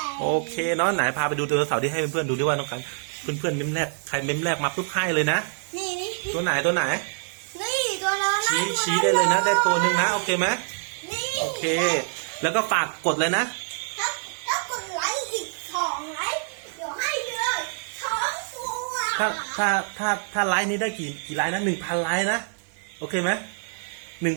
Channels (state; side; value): silent; left; digital silence